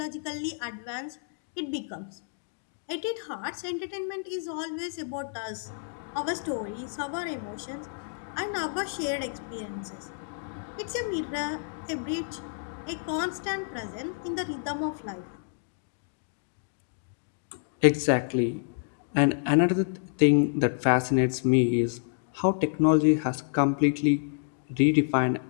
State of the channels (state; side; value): silent; right; digital silence